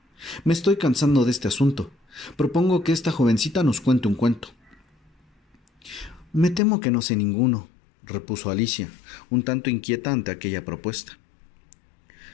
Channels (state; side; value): drops out; right; at 6.6 s